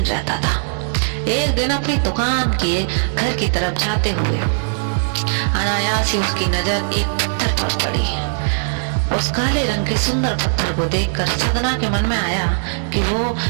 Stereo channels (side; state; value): left; silent; digital silence